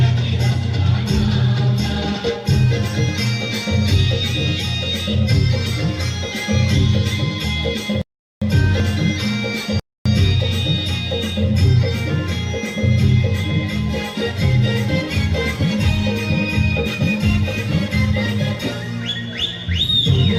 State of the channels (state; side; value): identical; both; correlation 1.00